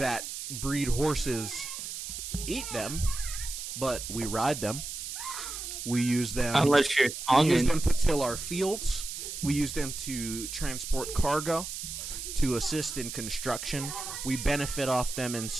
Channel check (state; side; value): noise; right; hiss, 7 dB below the sound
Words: breed horses eat them, but we ride them. We use them. Unless you're we use them to till our fields. We use them to transport cargo, to assist in construction. We benefit off them in